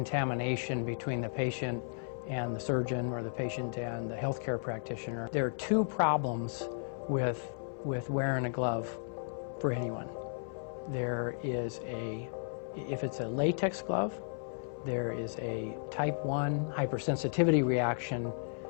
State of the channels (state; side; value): silent; right; 55 dB below the other